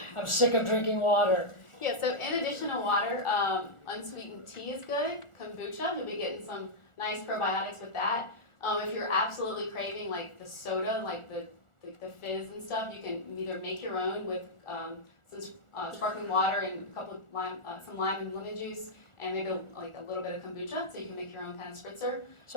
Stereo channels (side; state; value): right; late; 1.4 ms